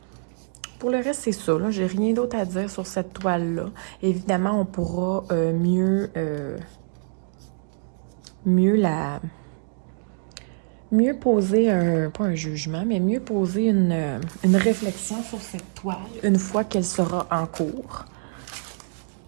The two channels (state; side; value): silent; left; digital silence